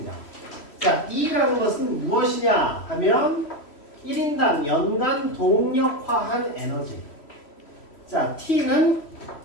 자, E라는 것은 무엇이냐 하면 1인당 연간 동력화한 에너지. 자, T는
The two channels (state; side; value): late; right; 3.1 ms